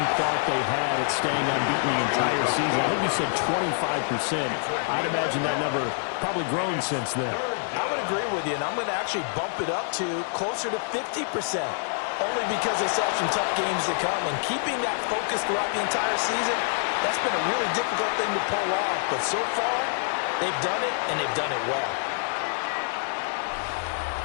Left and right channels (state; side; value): silent; right; 61 dB below the other